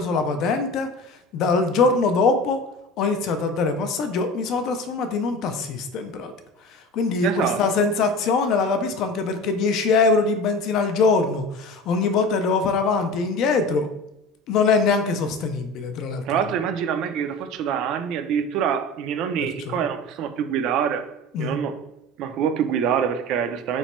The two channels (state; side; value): normal; both; correlation 0.34